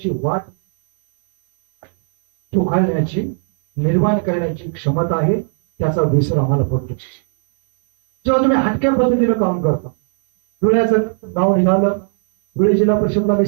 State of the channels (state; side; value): silent; left; 60 dB below the other